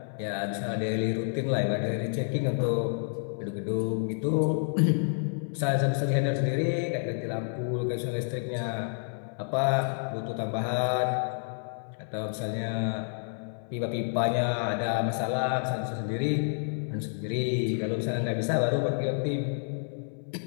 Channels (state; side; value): silent; right; 58 dB below the other